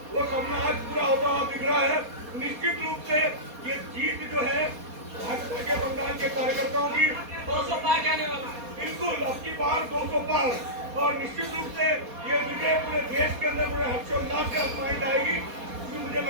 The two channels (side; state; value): left; late; 4.2 ms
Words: वो सपना आज पूरा होता हुआ दिख रहा है। निश्चित रूप से ये जीत जो है भाजपा के बंगाल के कार्यकर्ताओं की 200 पार जाने वाला है। बिल्कुल अब की बार 200 पार, और निश्चित रूप से ये विजय पूरे देश के अंदर पूरे हर्षोल्लास के साथ मनाई जाएगी। क्योंकि मुझे